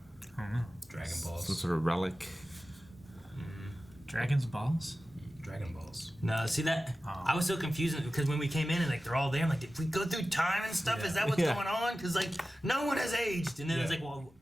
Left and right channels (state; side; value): normal; both; correlation 0.95